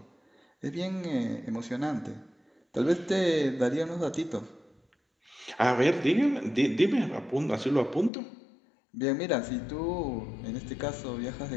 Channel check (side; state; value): right; drops out; at 8.1 s